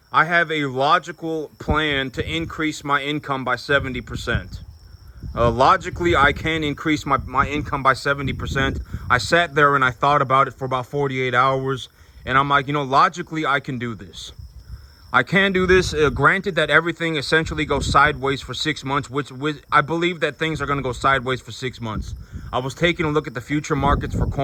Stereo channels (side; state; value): both; identical; correlation 1.00